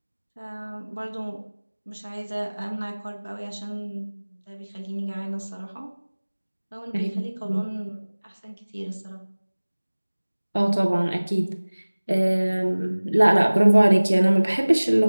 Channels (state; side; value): inverted; both; correlation -1.00